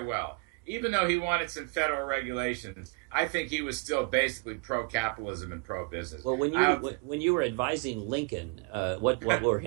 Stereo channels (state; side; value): quieter; left; 32.1 dB